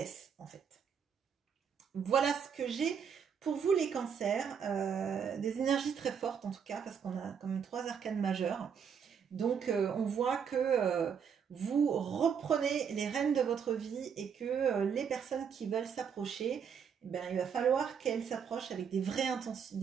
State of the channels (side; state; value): left; quieter; 7.2 dB